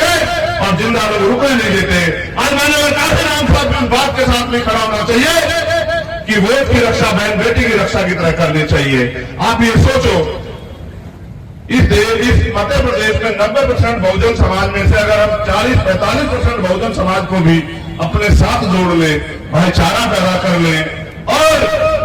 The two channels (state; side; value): identical; both; correlation 1.00